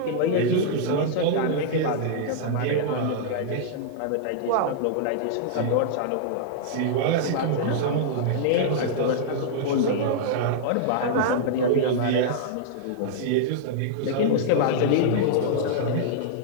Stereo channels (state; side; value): different; both; correlation -0.02